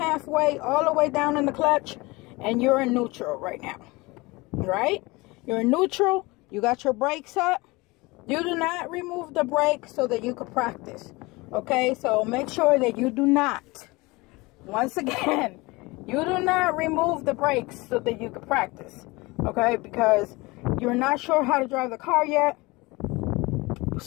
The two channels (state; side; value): quieter; right; 23.3 dB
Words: all the way down in the clutch, and you're in neutral right now. Right, you're in neutral. You got your brakes up. You do not remove the brake so that you can practice. Okay, so make sure that you do not, once again, you do not remove the brakes so that you can practice. Okay, because you're not sure how to drive the car yet,